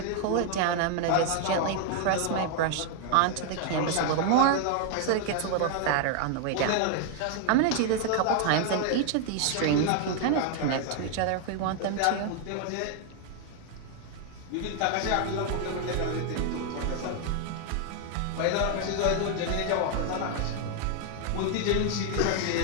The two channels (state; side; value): different; both; correlation 0.00